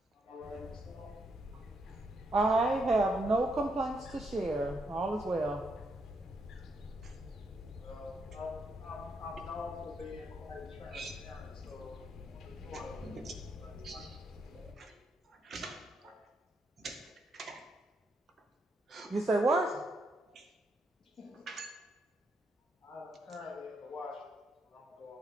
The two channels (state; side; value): normal; both; correlation 0.77